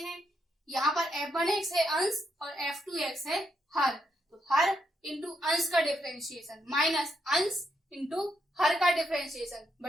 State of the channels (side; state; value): both; normal; correlation 0.79